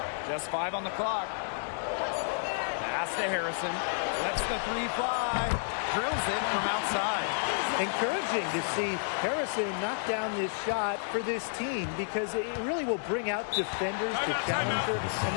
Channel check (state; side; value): silent; right; digital silence